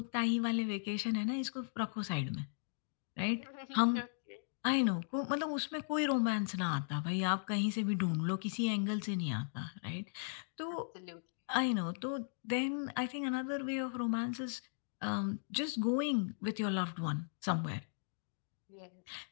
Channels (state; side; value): silent; right; digital silence